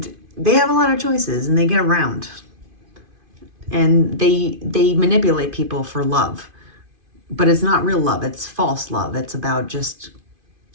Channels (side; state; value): left; late; 2.5 ms